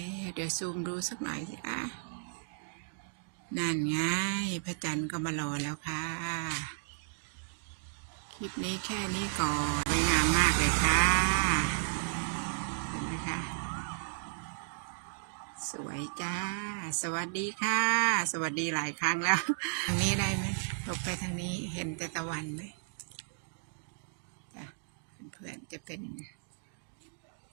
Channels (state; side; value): silent; left; digital silence